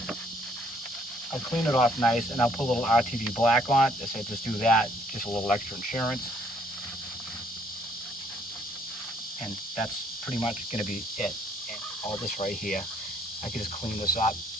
I'll clean it off nice, and I'll put a little RTV black on it. I said just do that, just a little extra insurance. And that's pretty much gonna be it. And all this right here, I can just clean this up.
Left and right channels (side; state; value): both; normal; correlation 0.64